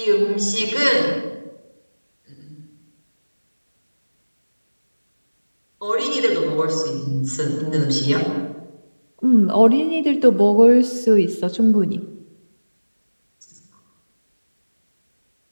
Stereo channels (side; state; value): both; inverted; correlation -1.00